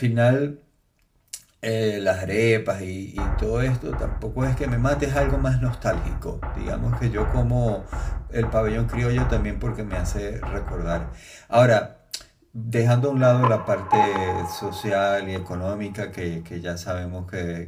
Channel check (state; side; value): identical; both; correlation 1.00